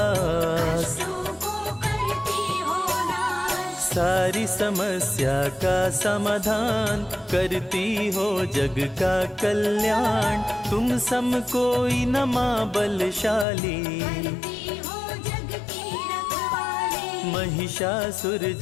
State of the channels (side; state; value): right; drops out; at 13.5 s